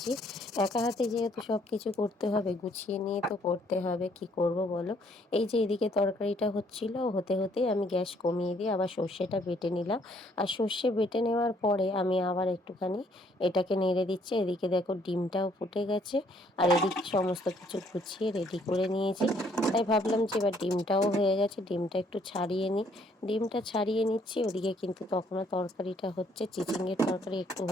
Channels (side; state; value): both; normal; correlation 0.65